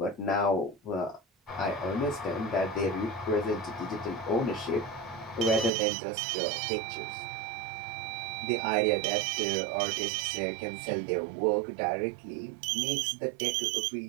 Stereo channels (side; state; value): left; drops out; at 5.7 s